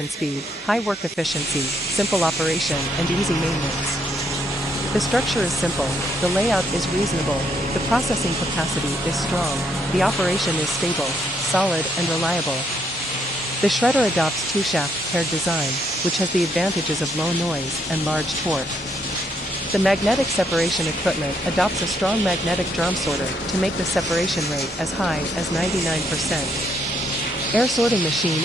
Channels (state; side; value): normal; both; correlation 0.72